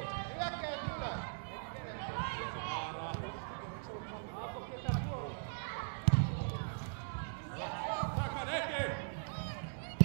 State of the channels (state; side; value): silent; left; digital silence